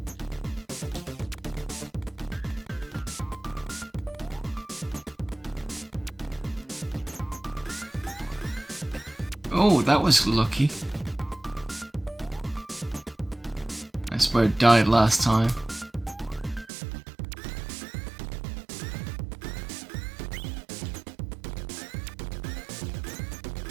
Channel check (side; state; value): left; drops out; at 16.7 s